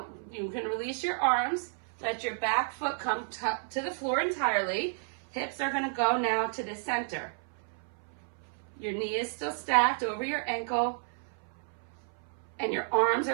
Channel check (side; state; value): left; silent; 57 dB below the other